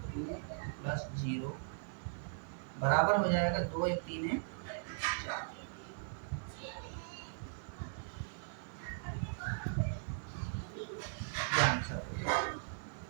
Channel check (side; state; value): left; silent; digital silence